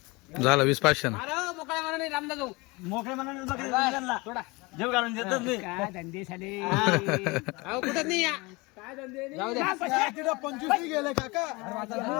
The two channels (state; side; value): quieter; right; 25.0 dB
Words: झालं 20,500 मोकळ्या मनाने रामदा जाऊ मोकळे मनाने थोडा जेव घालून देतच नाही काय धंदे झाले अहो कुठं नाही या काय धंदे जाऊ द्या 25 गेले काका